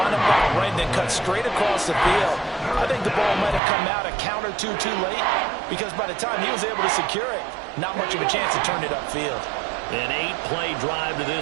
up on the right and then cut straight across the field. I think the ball might have come out a count or two too late because by the time he was able to secure it, not much of a chance to turn it upfield. An 8-play drive to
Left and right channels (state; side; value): drops out; left; at 3.6 s